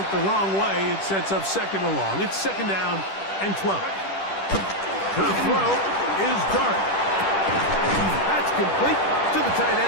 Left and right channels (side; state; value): right; late; 10 ms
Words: the wrong way. It sets up 2nd and long. It's 2nd down and 12. The throw is Dart. That's complete to the tight